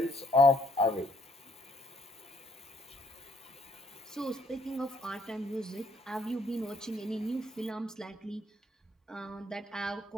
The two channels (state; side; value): normal; both; correlation 0.68